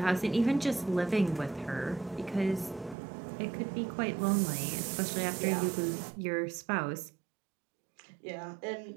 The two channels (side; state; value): left; drops out; at 3.0 s